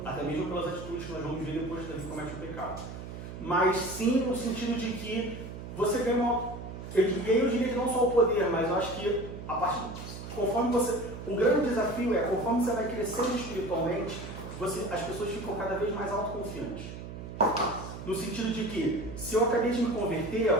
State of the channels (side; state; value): right; noise; hum, 10 dB below the sound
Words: Até mesmo pelas atitudes que nós vamos ver depois que Davi comete o pecado. Mas sim no sentido de que você ganha uma... Eu diria que não só o poder, mas eu acho que a partir... Conforme você... O grande desafio é, conforme você vai crescendo espiritualmente, as pessoas ficam cada vez mais autoconfiantes. No sentido de que, se eu acabei de me converter, é o